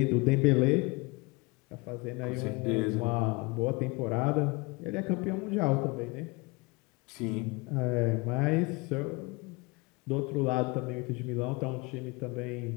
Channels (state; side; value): quieter; right; 26.1 dB